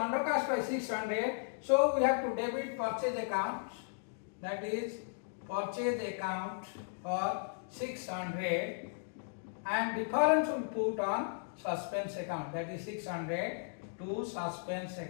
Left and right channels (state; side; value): silent; right; digital silence